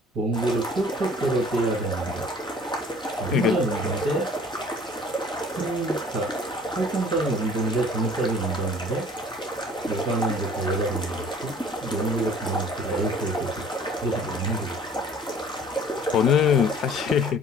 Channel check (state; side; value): normal; both; correlation 0.51